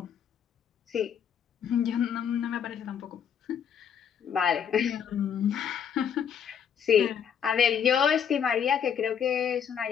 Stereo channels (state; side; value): quieter; right; 7.9 dB